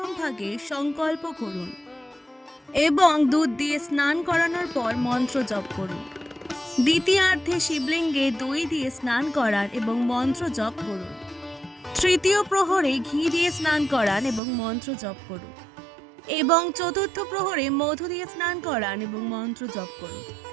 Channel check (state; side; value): drops out; left; at 14.4 s